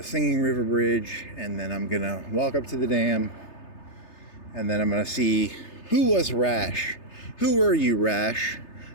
Singing River Bridge, and then I'm going to walk up to the dam, and then I'm going to see who was Rash. Who were you, Rash,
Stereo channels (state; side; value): late; right; 3.3 ms